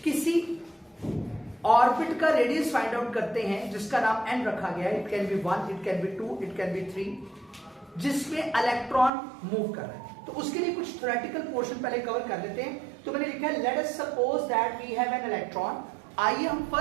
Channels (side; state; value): left; drops out; at 9.1 s